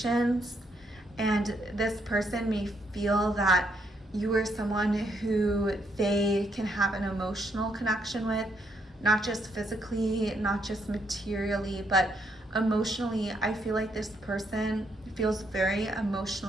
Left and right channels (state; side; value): normal; both; correlation 0.74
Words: and this person may feel that you are someone who they can have an emotional connection with, not just physically, not just materially, but emotionally. I feel like this person feels very